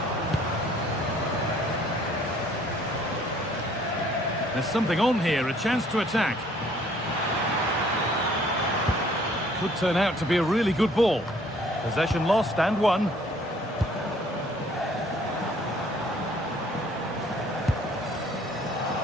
There's something on here, a chance to attack. Could turn out to be a really good ball. Possession lost and won.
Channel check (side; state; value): both; normal; correlation 0.59